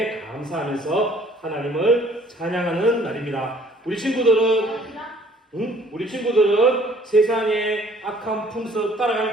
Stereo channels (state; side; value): normal; both; correlation 0.57